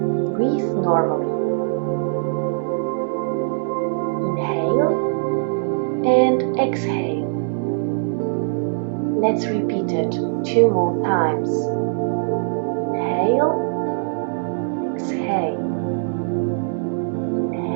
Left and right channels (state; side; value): silent; left; digital silence